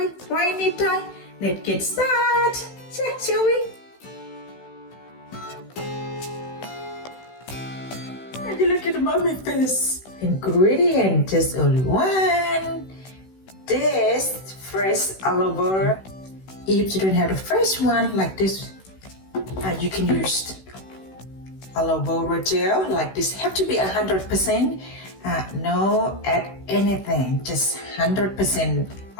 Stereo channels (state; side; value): late; right; 16 ms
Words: Right, Nitnoy? Let's get started. Shall we? And you look at the mommy face. Ingredient, just only one. This fresh aloe vera. If you don't have the fresh one like this, you can use aloe vera gel like this. Have to be 100%. No add anything, just 100%